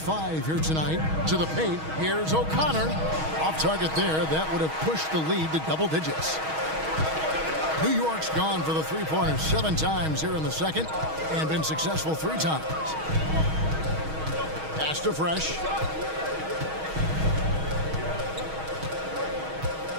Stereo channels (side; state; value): left; late; 6.3 ms